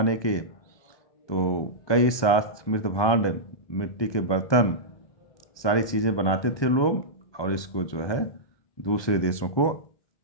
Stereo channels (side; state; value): right; late; 1.2 ms